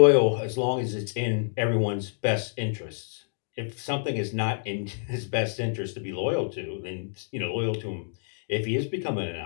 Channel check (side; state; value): right; silent; digital silence